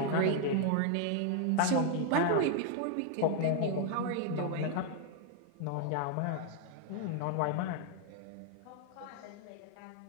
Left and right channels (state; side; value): different; both; correlation 0.00